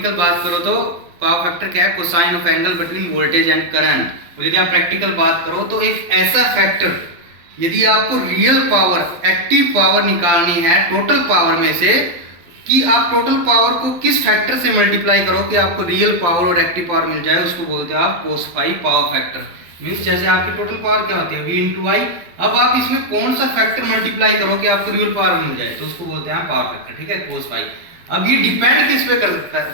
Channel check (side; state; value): left; late; 12 ms